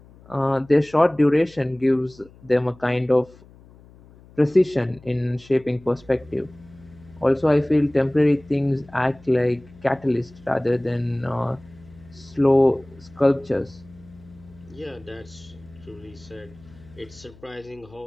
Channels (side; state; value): left; noise; hum, 24 dB below the sound